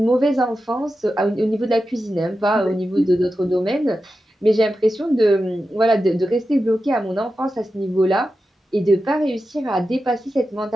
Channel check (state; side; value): normal; both; correlation 0.91